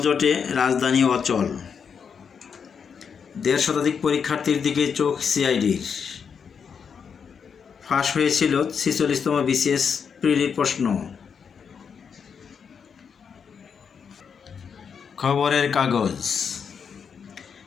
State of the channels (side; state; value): right; quieter; 6.6 dB